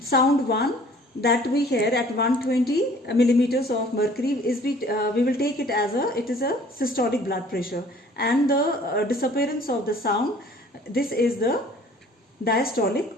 1 that we hear at 120 millimeters of mercury is we will take it as it is a systolic blood pressure, and the disappearance of the sound, this is the diastolic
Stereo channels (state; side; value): normal; both; correlation 0.53